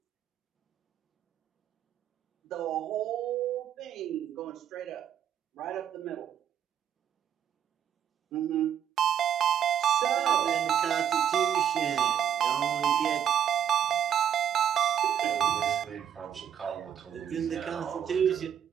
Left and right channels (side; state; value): left; quieter; 9.3 dB